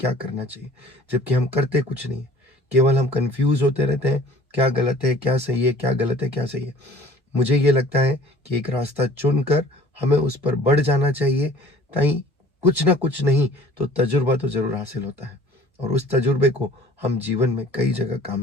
करना चाहिए, जबकि हम करते कुछ नहीं है। केवल हम कंफ्यूज होते रहते हैं, क्या गलत है क्या सही है, क्या गलत है क्या सही है। मुझे ये लगता है कि एक रास्ता चुनकर हमें उस पर बढ़ जाना चाहिए, ताकि कुछ ना कुछ नहीं तो तजुर्बा तो जरूर हासिल होता है, और उस तजुर्बे को हम जीवन में कई जगह काम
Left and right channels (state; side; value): normal; both; correlation 0.50